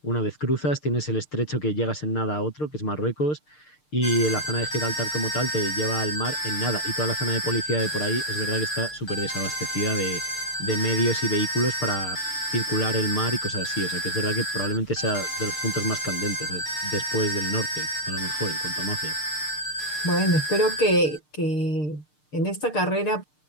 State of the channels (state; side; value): late; right; 6.6 ms